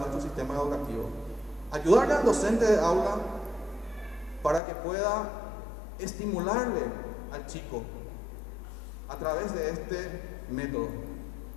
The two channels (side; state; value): right; drops out; at 4.6 s